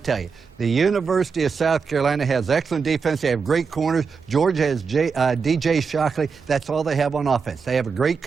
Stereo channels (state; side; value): quieter; left; 5.5 dB